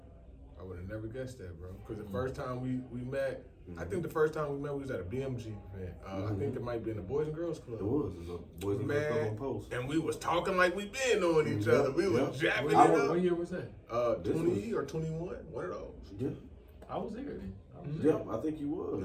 I would have never guessed that, bro. Because the first time we met, I think the first time we met, we was at a BMG event. I think it might be in the Boys and Girls Club. It was a Boys and Girls Club on Post. And we was talking like we been knowing each other. We was jabbing it up. What year was that? 20 or 21, one of those. Yeah. I was there then. Yep, I think you was.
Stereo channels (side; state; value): both; identical; correlation 1.00